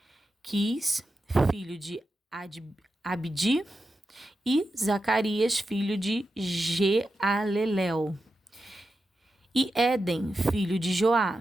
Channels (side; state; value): both; normal; correlation 0.90